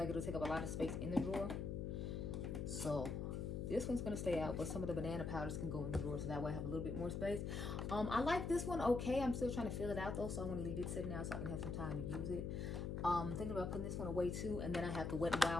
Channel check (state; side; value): noise; left; hum, 2 dB below the sound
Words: it'll take up a lot of space in the drawer. So this one's gonna stay out, but some of the banana powders can go in the drawer, so that way I have a little bit more space. I like this one okay. I'm still trying to fill it out though, so I want to leave it sitting out so I can have some time to use it. Thinking about putting this one away too, and then I have the Wet n